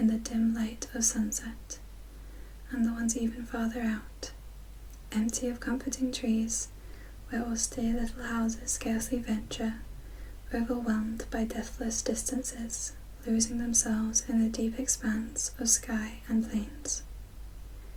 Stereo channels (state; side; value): identical; both; correlation 1.00